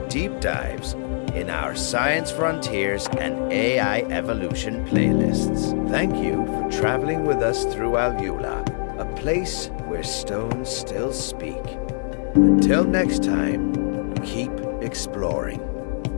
dives in our Science Frontiers and AI Evolution playlists. Thank you for traveling with us through AlUla, a place where stones still speak. Until next time, keep exploring.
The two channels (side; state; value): right; silent; digital silence